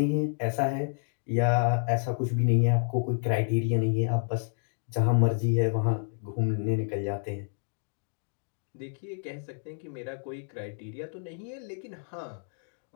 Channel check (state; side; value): silent; right; 57 dB below the other